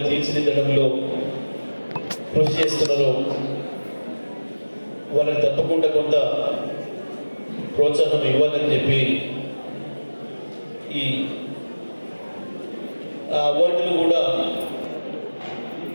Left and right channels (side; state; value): both; inverted; correlation -1.00